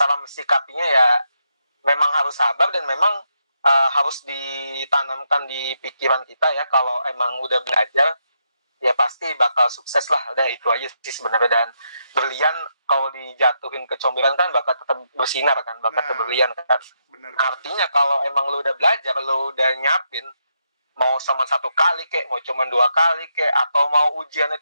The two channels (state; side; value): inverted; both; correlation -0.81